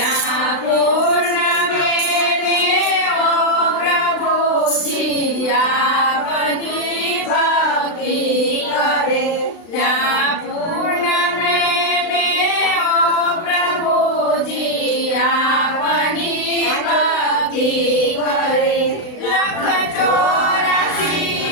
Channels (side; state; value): right; late; 35 ms